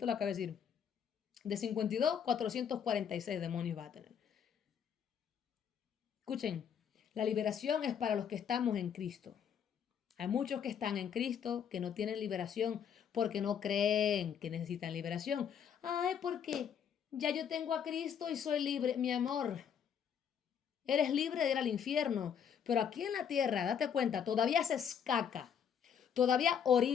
lo acabo de decir. De 52, 446 demonios vas a tener. Escuchen, la liberación es para los que estamos en Cristo. Hay muchos que están en Cristo que no tienen liberación porque no creen que necesitan liberación. Ay, porque ya yo tengo a Cristo y soy libre. Mi amor, eres libre de ir al infierno. Pero aquí en la tierra, date cuenta, todavía haces caca. Todavía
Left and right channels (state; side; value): quieter; right; 7.9 dB